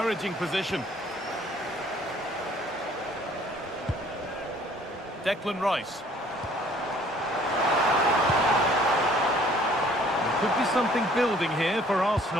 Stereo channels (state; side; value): normal; both; correlation 0.57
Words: position. Declan Rice. Could be something building here for